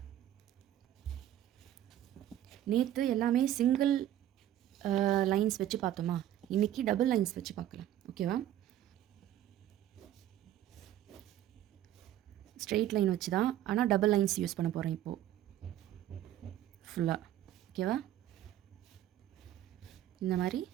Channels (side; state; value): left; quieter; 12.2 dB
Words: நேற்று எல்லாமே சிங்கிள் லைன்ஸ் வச்சு பார்த்தோமா, இன்றைக்கி டபுள் லைன்ஸ் வச்சு பார்க்கலாம். ஓகேவா? ஸ்ட்ரெயிட் லைன் வச்சு தான், ஆனால் டபுள் லைன்ஸ் யூஸ் பண்ண போகிறேன் இப்போது ஃபுல்லாக. ஓகேவா? இந்த மாதிரி